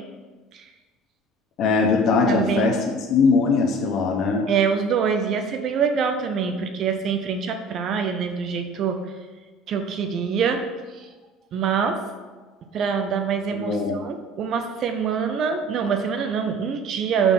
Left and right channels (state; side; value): normal; both; correlation 0.45